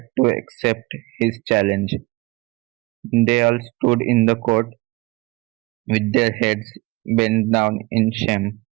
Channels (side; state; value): left; quieter; 23.0 dB